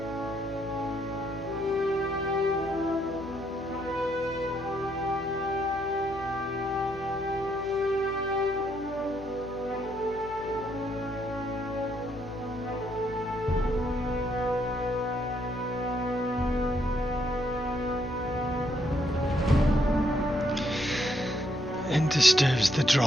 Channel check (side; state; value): left; noise; hum, 16 dB below the sound